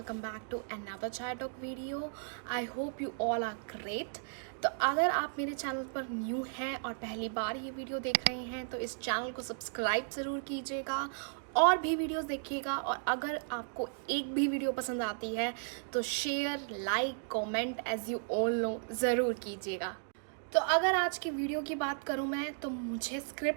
back to another Chai Talk video. I hope you all are great. तो अगर आप मेरे channel पर new हैं और पहली बार ये वीडियो देख रहे हैं तो इस चैनल को सब्सक्राइब ज़रूर कीजिएगा और भी वीडियोस देखिएगा। और अगर आपको एक भी वीडियो पसंद आती है तो share, like, comment as you all know ज़रूर कीजिएगा। तो अगर आज की वीडियो की बात करूं मैं तो मुझे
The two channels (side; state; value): left; silent; digital silence